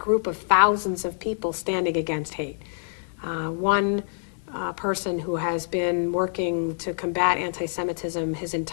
of thousands of people standing against hate. One person who has been working to combat anti-Semitism his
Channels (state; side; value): silent; right; digital silence